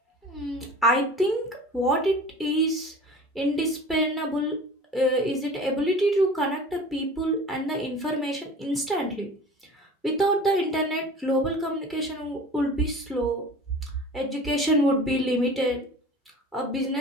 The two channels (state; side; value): normal; both; correlation 0.40